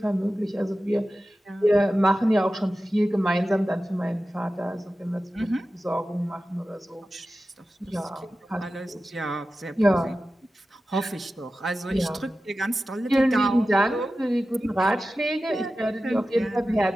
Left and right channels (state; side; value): normal; both; correlation 0.94